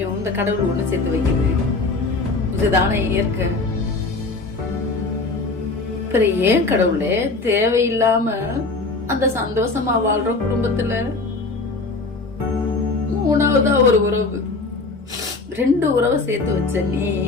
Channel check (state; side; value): quieter; right; 3.6 dB